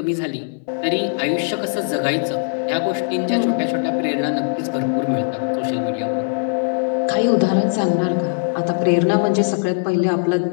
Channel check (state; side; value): silent; right; digital silence